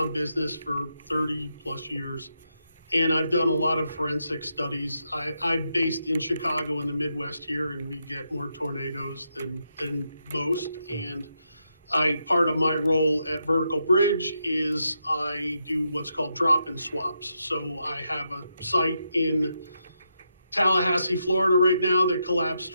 business for 30 plus years, And I've done a lot of forensic studies. I'm based in Chicago in the Midwest here, and we get more tornadoes than most. And part of my role at Vertical Bridge is I do what's called drop and swaps. So I have a site in Tallahassee, Florida right now that collapsed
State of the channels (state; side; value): inverted; both; correlation -0.82